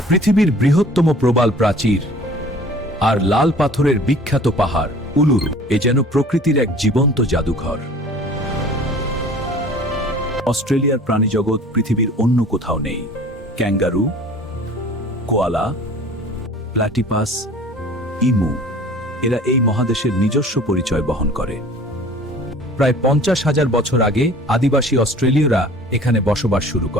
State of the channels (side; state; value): both; normal; correlation 0.47